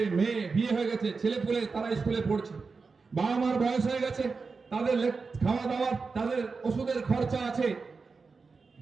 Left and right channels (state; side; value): quieter; left; 4.6 dB